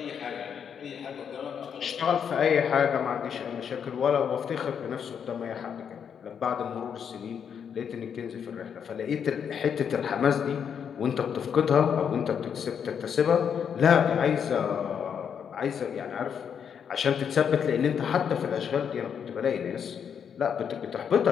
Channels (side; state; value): right; quieter; 7.6 dB